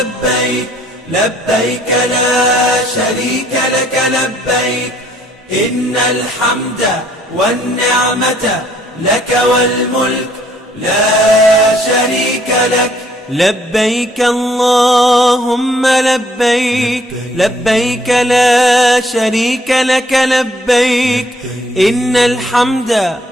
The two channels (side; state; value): both; normal; correlation 0.64